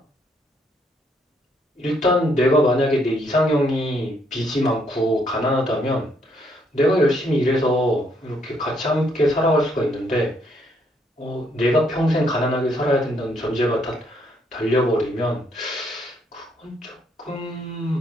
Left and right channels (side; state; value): both; normal; correlation 0.71